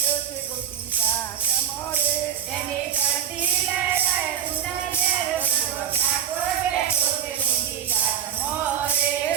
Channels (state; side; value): quieter; left; 9.3 dB